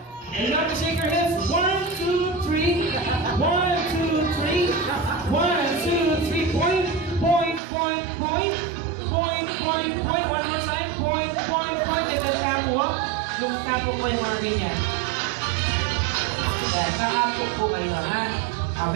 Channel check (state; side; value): drops out; left; at 7.6 s